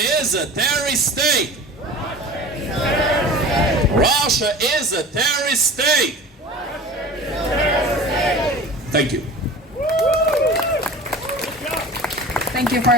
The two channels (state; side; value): normal; both; correlation 0.38